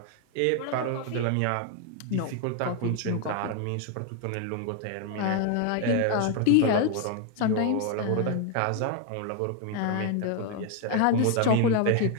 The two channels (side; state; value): both; different; correlation 0.01